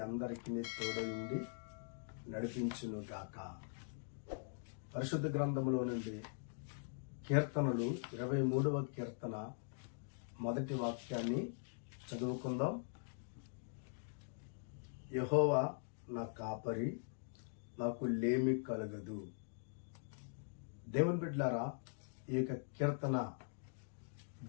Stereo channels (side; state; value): right; silent; digital silence